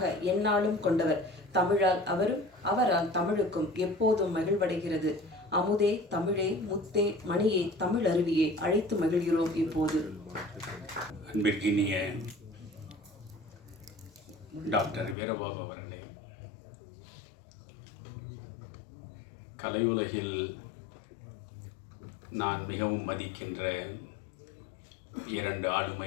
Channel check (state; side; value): drops out; right; at 15.2 s